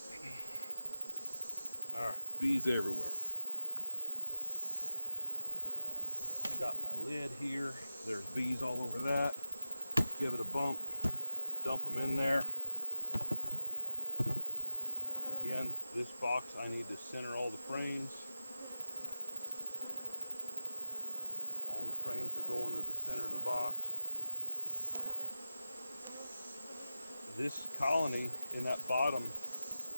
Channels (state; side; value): inverted; both; correlation -0.96